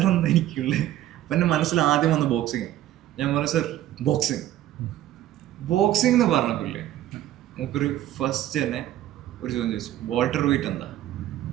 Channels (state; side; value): quieter; left; 13.2 dB